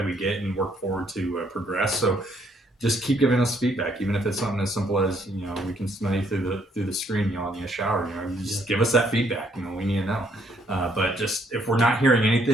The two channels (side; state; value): both; normal; correlation 0.68